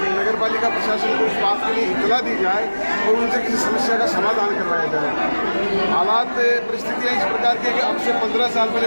नगर पालिका प्रशासन को इस बात के लिए इतला दी जाए और उनसे किसी समस्या का समाधान करवाया जाए। हालात, परिस्थितियाँ इस प्रकार की है कि अब से 15 साल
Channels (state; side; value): inverted; both; correlation -1.00